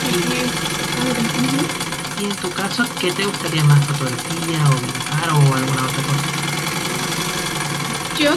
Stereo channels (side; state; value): both; identical; correlation 1.00